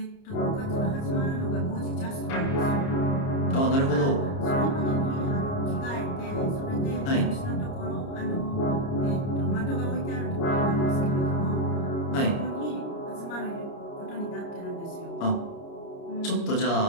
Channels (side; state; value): right; late; 29 ms